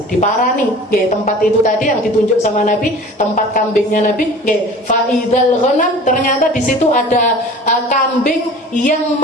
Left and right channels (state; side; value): normal; both; correlation 0.41